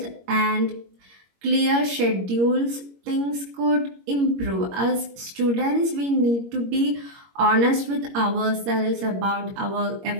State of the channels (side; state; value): left; late; 21 ms